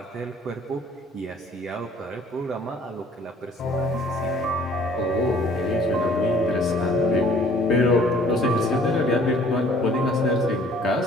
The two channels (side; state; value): both; normal; correlation 0.56